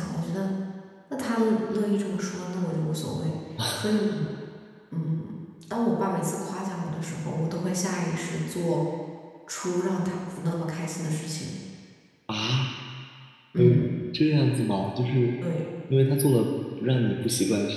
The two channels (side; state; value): both; identical; correlation 1.00